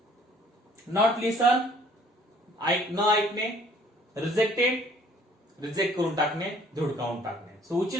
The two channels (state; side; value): normal; both; correlation 0.57